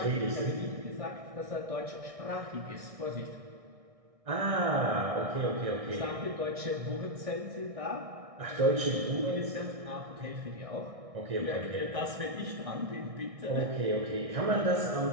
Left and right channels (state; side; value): late; left; 1.6 ms